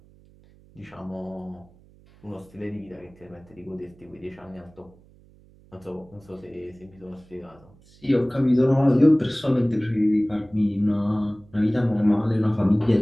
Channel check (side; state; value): right; noise; hum, 27 dB below the sound